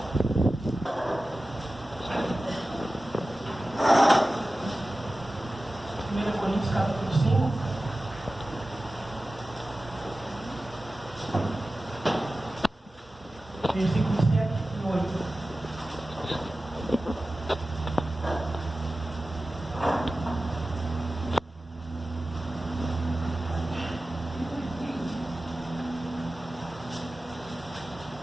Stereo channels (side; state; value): both; normal; correlation 0.95